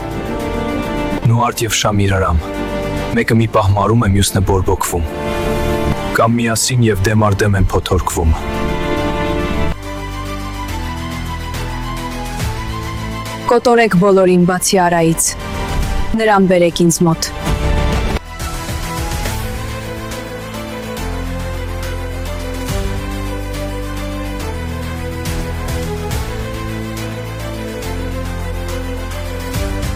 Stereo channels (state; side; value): identical; both; correlation 1.00